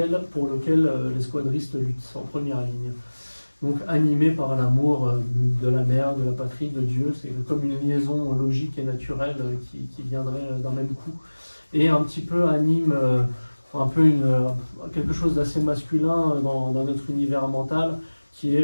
pour lequel les squadristes luttent en première ligne. Donc animé par l'amour de la mère, de la patrie, de Dieu, c'est comme une liaison logique et naturelle qui viendrait d'un même coup. Et un petit peu anime un peu quelque chose d'assez masculin dans notre univers mental, qui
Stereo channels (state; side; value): inverted; both; correlation -1.00